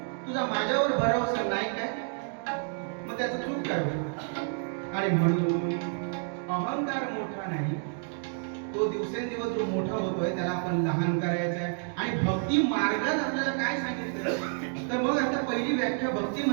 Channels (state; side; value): silent; left; 58 dB below the other